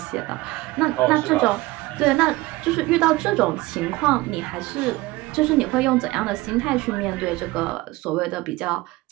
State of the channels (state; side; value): quieter; left; 19.8 dB